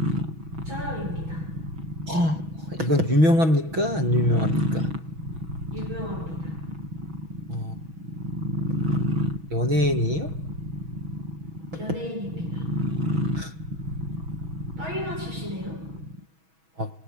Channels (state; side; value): late; left; 6.2 ms